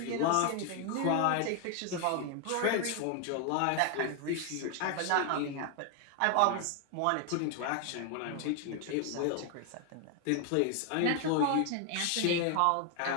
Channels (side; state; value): both; different; correlation 0.00